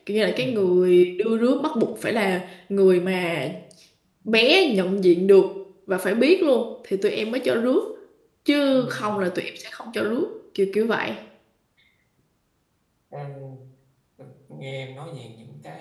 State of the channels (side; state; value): both; identical; correlation 1.00